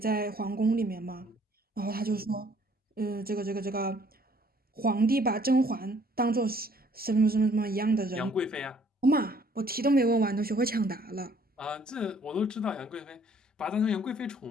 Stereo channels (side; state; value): both; normal; correlation 0.60